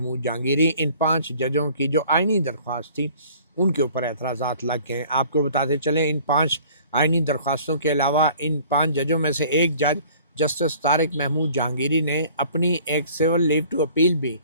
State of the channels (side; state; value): both; inverted; correlation -0.52